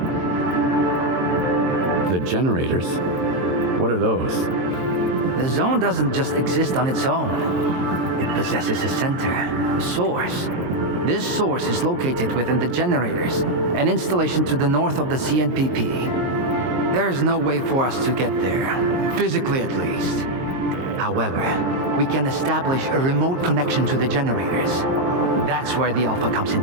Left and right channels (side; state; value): left; late; 22 ms